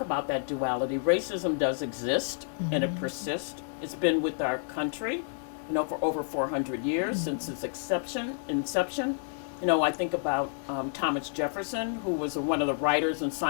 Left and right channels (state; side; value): silent; right; digital silence